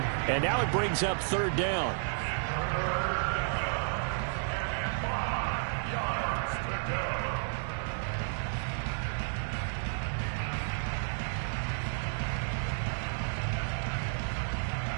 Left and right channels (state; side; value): silent; left; digital silence